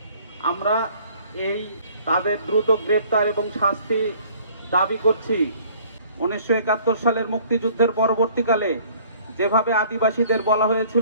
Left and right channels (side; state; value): both; inverted; correlation -0.55